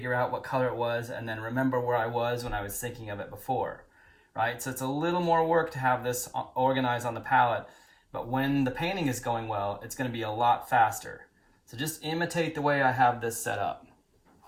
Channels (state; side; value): identical; both; correlation 1.00